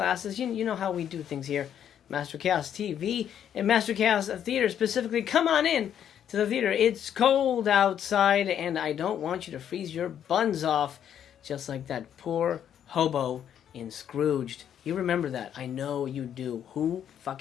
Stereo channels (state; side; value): quieter; right; 9.5 dB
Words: You know how we do things here, Master Chaos TV and Master Chaos Theater specifically. Come on in to the theater. It's cold outside, and I don't want you to freeze your buns off, just like that poor hobo in Scrooged. You remember that. I know you do. Who